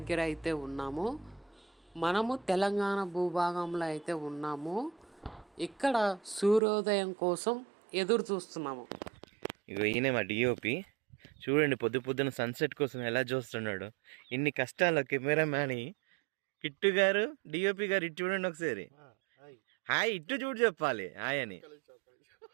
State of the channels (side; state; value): left; drops out; at 6.6 s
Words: అయితే ఉన్నాము. మనము తెలంగాణ భూభాగంలో అయితే ఉన్నాము. ఇక్కడ సూర్యోదయం కోసం ఎదురు చూస్తున్నాము. ఇగో ఈయనే మా డిఓపి. చూడండి పొద్దున సన్సెట్ కోసం ఎలా చూస్తున్నాడు. ఇన్ని కష్టాలు కెమెరామ్యాన్ కిట్టు గారు, డిఓపి గారు ఇటు చూడండి ఒకసారి. హాయ్ ఇటు చూడు చెప్పాలి హాయ్ అని.